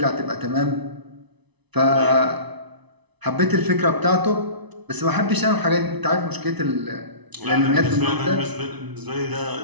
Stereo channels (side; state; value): left; late; 1.0 ms